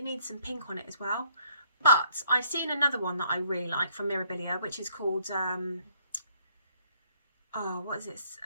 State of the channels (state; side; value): inverted; both; correlation -0.66